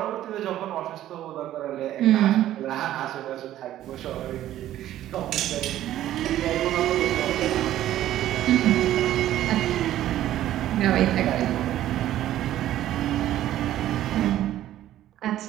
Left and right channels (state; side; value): quieter; left; 13.0 dB